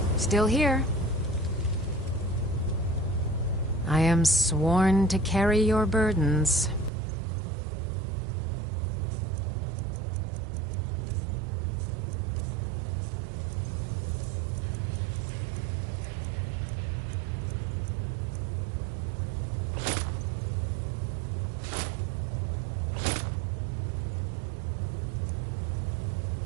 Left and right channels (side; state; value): left; drops out; at 6.9 s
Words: Still here. I am sworn to carry your burdens.